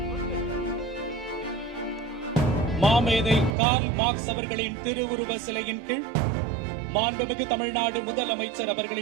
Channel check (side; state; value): left; drops out; at 3.6 s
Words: மாமேதை கார்ல் மார்க்ஸ் அவர்களின் திருவுருவ சிலையின் கீழ் மாண்புமிகு தமிழ்நாடு முதலமைச்சர்